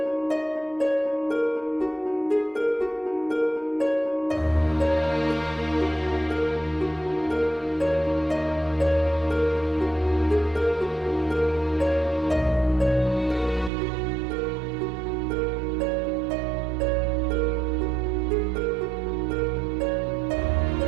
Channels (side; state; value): left; drops out; at 13.7 s